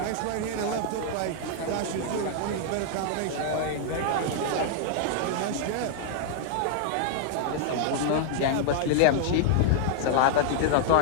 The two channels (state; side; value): different; both; correlation -0.01